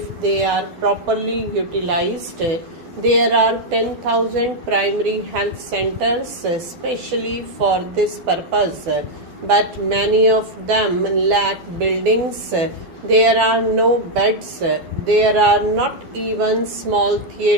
they are properly utilized. There are 10,000 primary health centers especially for this purpose, but many of them lack buildings. There are no beds. There are not even small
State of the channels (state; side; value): late; left; 12 ms